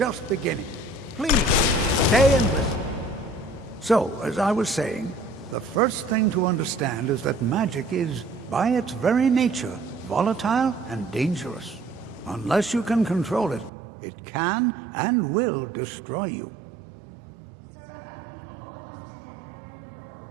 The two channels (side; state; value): left; drops out; at 13.7 s